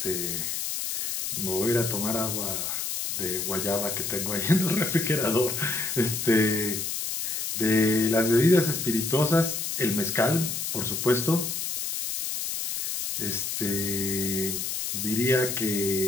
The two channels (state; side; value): noise; left; hiss, 2 dB below the sound